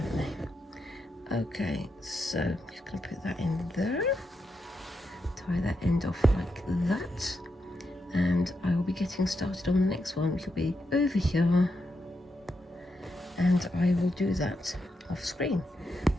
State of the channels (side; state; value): both; normal; correlation 0.84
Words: they? Okay, so I'm just going to put that in there, tie that end off like that, and I will be getting started on the next one, which will be over here, and I will do that off screen.